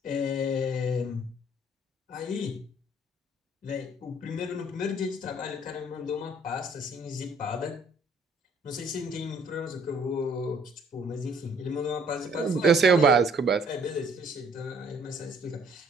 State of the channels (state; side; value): normal; both; correlation 0.61